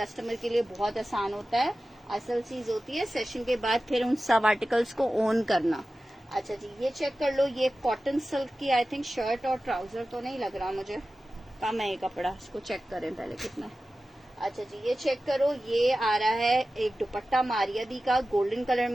के लिए बहुत आसान होता है। असल चीज होती है सेशन के बाद फिर उन सब आर्टिकल्स को ओन करना। अच्छा जी, ये चेक कर लो। ये कॉटन सिल्क की आई थिंक शर्ट और ट्राउजर तो नहीं लग रहा मुझे, कम है ये कपड़ा, इसको चेक करें पहले कितना है। अच्छा जी, ये चेक करो। ये आ रहा है एक दुपट्टा मारियादी का, गोल्डन कलर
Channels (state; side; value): normal; both; correlation 0.95